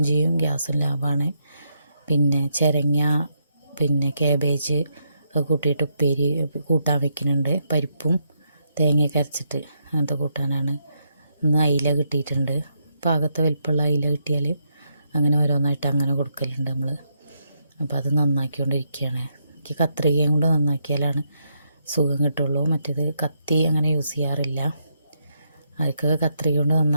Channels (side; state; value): both; inverted; correlation -0.79